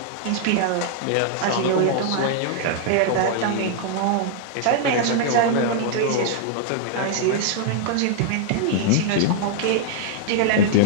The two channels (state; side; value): different; both; correlation 0.00